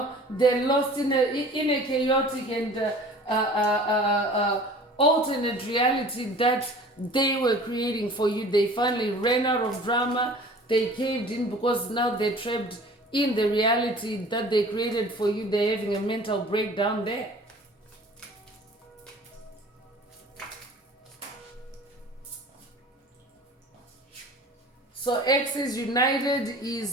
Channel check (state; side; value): normal; both; correlation 0.45